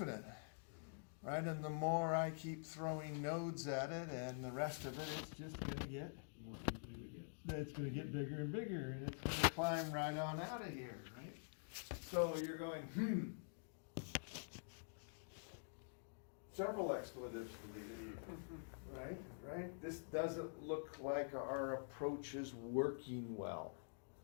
Right? And the more I keep throwing nodes at it and the rest of it, it's just going to get More infinite it gets. it's going to get bigger and bigger, and it's going to climb right on out of here, right? So you're going, several expletives, right? This doesn't look like our approach is working well,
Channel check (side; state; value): right; silent; digital silence